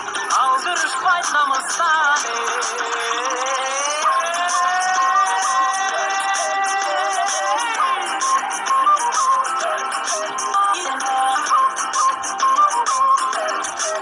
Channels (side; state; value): both; identical; correlation 1.00